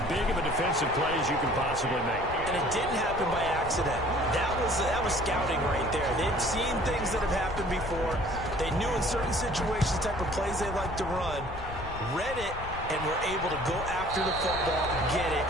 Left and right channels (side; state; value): left; noise; rumble, 10 dB below the sound